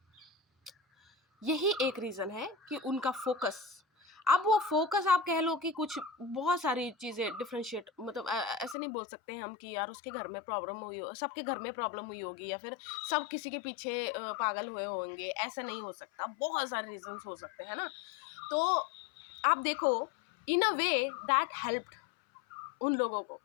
यही एक रीज़न है कि उनका फोकस, अब वो फोकस आप कह लो कि कुछ बहुत सारी चीज़ें डिफ्रेंशिएट, मतलब ऐसे नहीं बोल सकते हैं हम कि यार उसके घर में प्रॉब्लम हुई हो, सबके घर में प्रॉब्लम हुई होगी, या फिर सब किसी के पीछे पागल हुए होंगे, ऐसा नहीं हो सकता। बहुत सारे रीजंस हो सकते हैं ना। तो आप देखो, इन अ वे दैट हेल्प्ड उन लोगों को,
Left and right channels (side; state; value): right; drops out; at 8.8 s